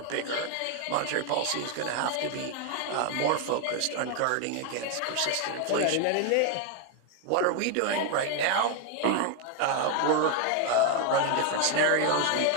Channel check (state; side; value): different; both; correlation 0.01